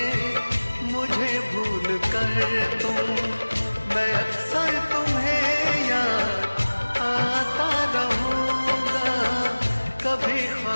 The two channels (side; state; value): both; inverted; correlation -1.00